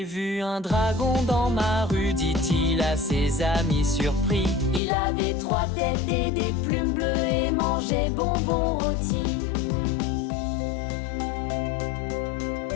vu un dragon dans ma rue, dit-il à ses amis surpris. Il avait 3 têtes et des plumes bleues et mangeait bonbons rôtis.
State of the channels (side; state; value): right; drops out; at 4.8 s